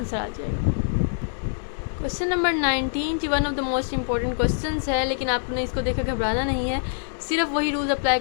आ जाएगा। क्वेश्चन नंबर 19 जी one of the most important questions है, लेकिन आपने इसको देखकर घबराना नहीं है। सिर्फ वही रूल्स अप्लाई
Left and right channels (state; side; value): silent; right; 62 dB below the other